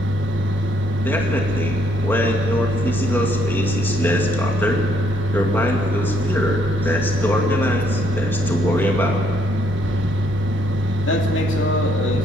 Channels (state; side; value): normal; both; correlation 0.70